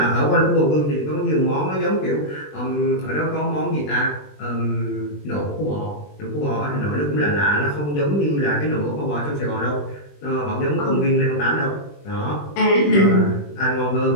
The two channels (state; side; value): late; right; 20 ms